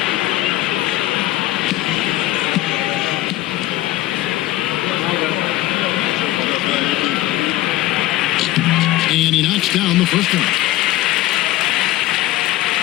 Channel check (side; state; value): right; quieter; 16.0 dB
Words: And he knocks down the first one.